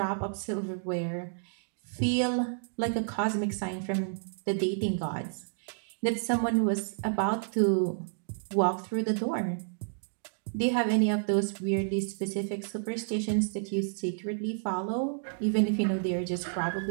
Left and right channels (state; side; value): silent; left; digital silence